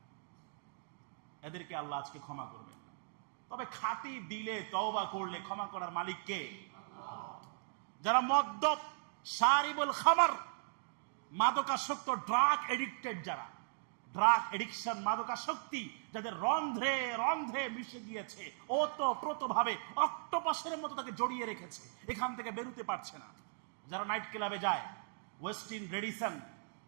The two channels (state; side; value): silent; left; digital silence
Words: এদেরকে আল্লাহ আজকে ক্ষমা করবেন। তবে খাঁটি দিলে তওবা করলে ক্ষমা করার মালিক কে? যারা মদ্যপ, শারিবুল খামার, মাদকাসক্ত, ড্রাগ এডিক্টেড, যারা ড্রাগ এডিকশন, মাদকাসক্তি যাদের রন্ধ্রে রন্ধ্রে মিশে গিয়েছে, ওতপ্রোতভাবে অক্টোপাসের মতো তাকে জড়িয়ে রেখেছে, এখান থেকে বেরোতে পারছে না। যারা নাইট ক্লাবে যায়, ওয়েস্টিন, রেডিসন,